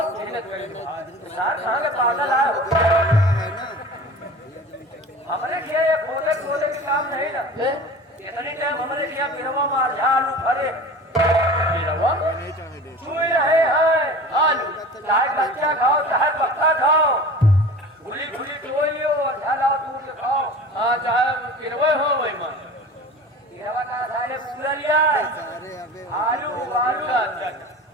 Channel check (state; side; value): normal; both; correlation 0.37